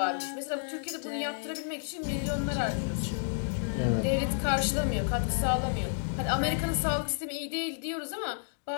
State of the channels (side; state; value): right; silent; digital silence